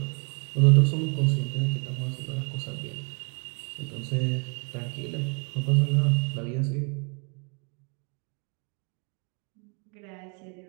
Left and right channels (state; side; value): quieter; left; 36.7 dB